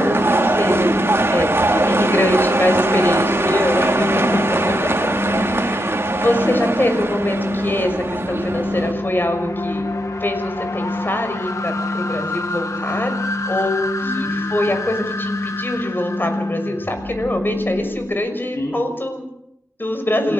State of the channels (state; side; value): normal; both; correlation 0.82